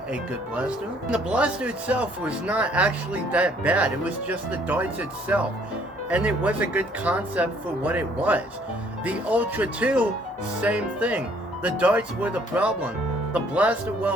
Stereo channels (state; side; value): normal; both; correlation 0.62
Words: a good blaster. The blaster itself was not actually that bad. It was just the darts itself, and it was a good concept for what it was. The Ultra 2, same thing. The darts were the problem. The